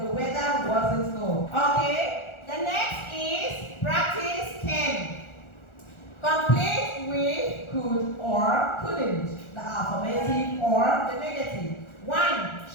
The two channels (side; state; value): right; late; 1.4 ms